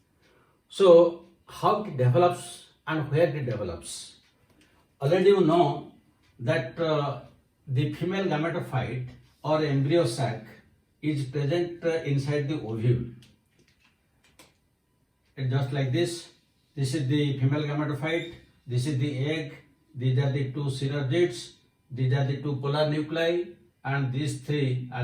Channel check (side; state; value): both; identical; correlation 1.00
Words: So, how it develops and where it develops. Already you know that the female gametophyte or embryo sac is present inside the ovule. It's just like this. This is the female gametophyte, this is the egg, these are the two synergids, these are the two polar nuclei, and these three